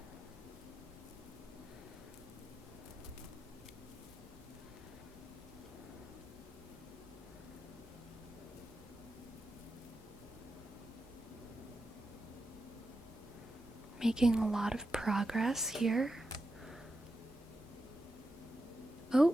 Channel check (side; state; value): both; normal; correlation 0.88